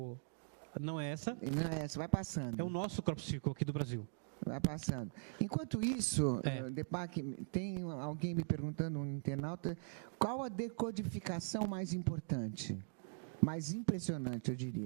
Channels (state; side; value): silent; left; digital silence